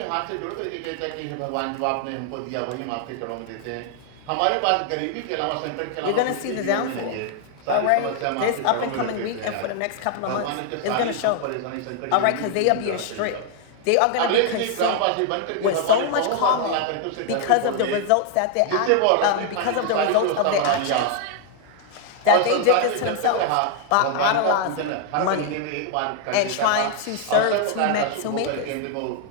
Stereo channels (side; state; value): both; different; correlation 0.00